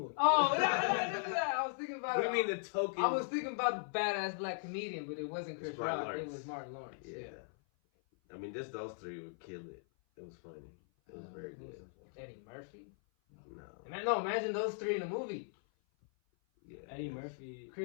Oh, no, I was thinking about. What do you mean the token? I was thinking about the badass black comedian, but it wasn't Chris It's Martin Rock. Lawrence. It was Martin Lawrence. Yeah. I mean, just those three would kill it. It was funny. It was very good. Eddie Murphy. No. Imagine those three in a movie. Yeah. Eddie Murphy.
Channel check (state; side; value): silent; right; 52 dB below the other